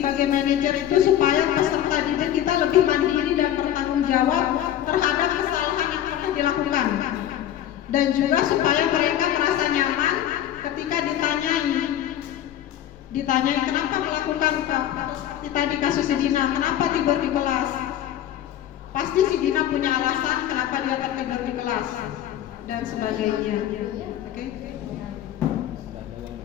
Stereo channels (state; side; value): quieter; right; 11.4 dB